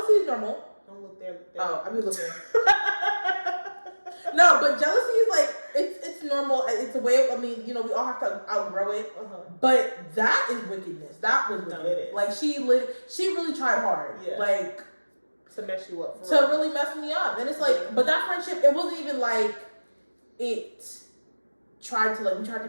is normal. Don't look there. Oh, I mean looking. No, but jealousy is like it's normal. It's a way of, I mean, you know, we all have to outgrow it. But that is wickedness. That was wickedness. No, it is. Like she really tried hard. Yeah. Like to mess you up. To really mess me up. And it's like, but that friendship, it wasn't even like it tried to we tried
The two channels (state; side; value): inverted; both; correlation -1.00